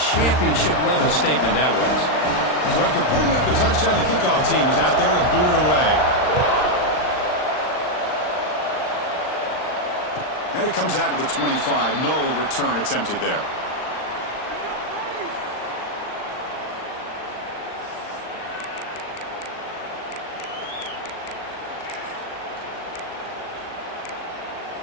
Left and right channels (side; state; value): right; late; 39 ms